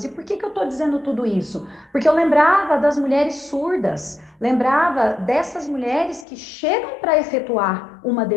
E por que eu estou dizendo tudo isso? Porque eu lembrava das mulheres surdas, lembrava dessas mulheres que chegam para efetuar uma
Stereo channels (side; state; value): right; drops out; at 6.2 s